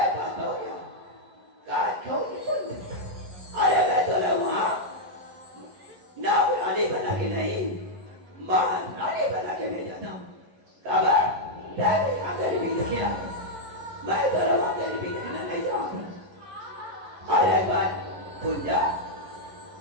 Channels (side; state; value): left; late; 11 ms